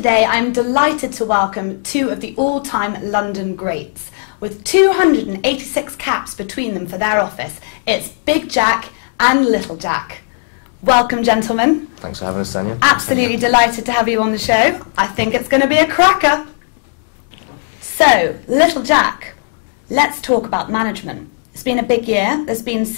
I'm delighted to welcome two of the all-time London greats. With 286 caps between them for their office, it's Big Jack and Little Jack. Welcome, gentlemen. Thanks for having us, Tanya. Absolutely delighted to have you on the show. I think it's going to be a cracker. So, Little Jack, let's talk about management. It's been a big year. There's been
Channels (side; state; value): right; silent; digital silence